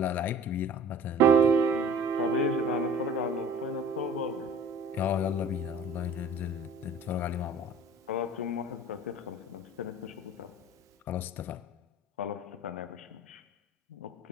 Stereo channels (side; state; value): both; normal; correlation 0.45